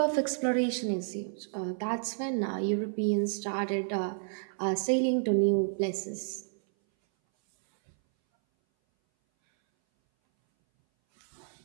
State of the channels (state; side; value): silent; left; 57 dB below the other